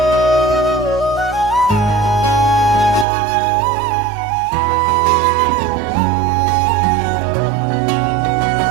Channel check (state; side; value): drops out; left; at 3.1 s